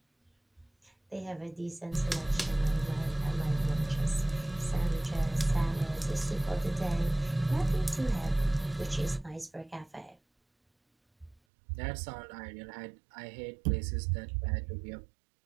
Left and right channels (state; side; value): drops out; left; at 11.4 s